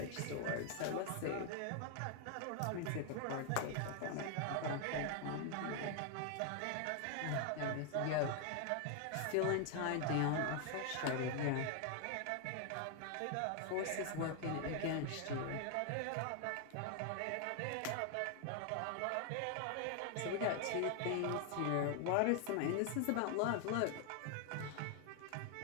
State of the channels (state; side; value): different; both; correlation 0.00